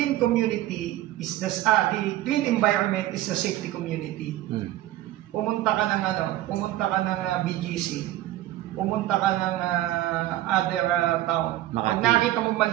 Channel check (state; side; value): quieter; left; 14.8 dB